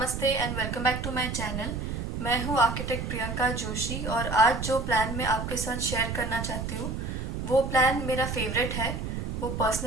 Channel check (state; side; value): noise; right; rumble, 4 dB below the sound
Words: and welcome back to my channel. मैं हूँ आर्किटेक्ट प्रियंका जोशी और आज जो प्लान मैं आपके साथ शेयर करना चाहती हूँ वो प्लान मेरा फेवरेट है। वो